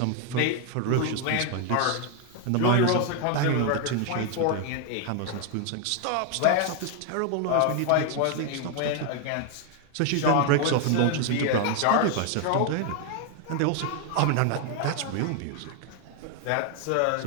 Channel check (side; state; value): both; different; correlation 0.00